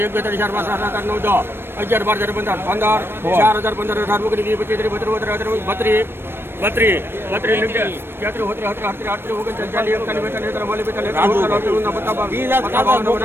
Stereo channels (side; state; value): left; late; 0.11 ms